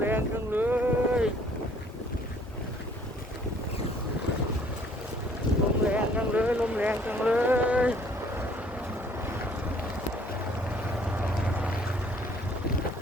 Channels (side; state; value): both; normal; correlation 0.59